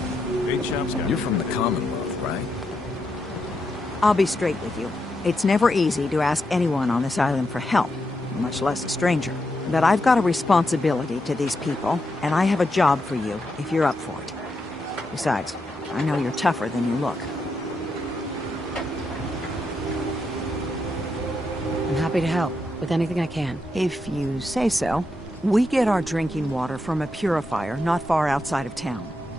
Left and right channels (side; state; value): both; normal; correlation 0.83